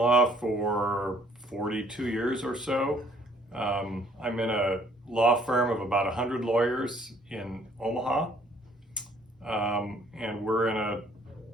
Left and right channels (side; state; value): both; normal; correlation 0.61